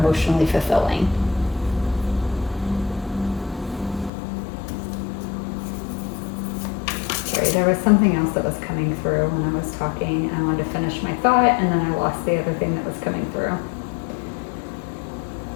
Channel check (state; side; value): drops out; right; at 4.1 s